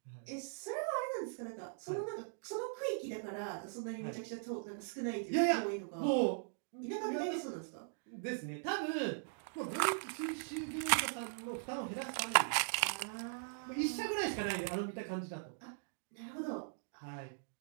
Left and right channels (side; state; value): left; silent; digital silence